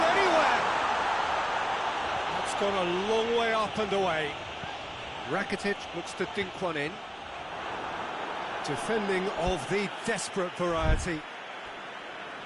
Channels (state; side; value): identical; both; correlation 1.00